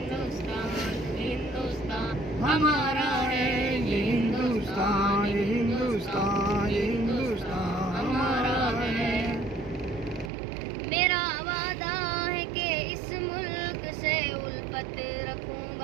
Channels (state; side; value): drops out; left; at 10.3 s